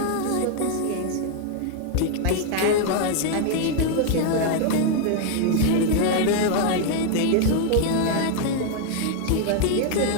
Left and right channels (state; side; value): different; both; correlation 0.00